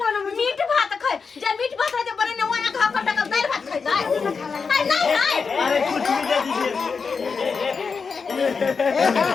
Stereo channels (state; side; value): quieter; right; 5.3 dB